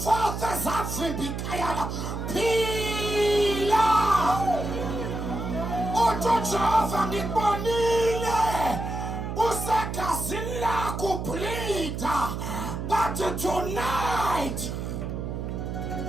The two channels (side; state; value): right; noise; hum, 5 dB below the sound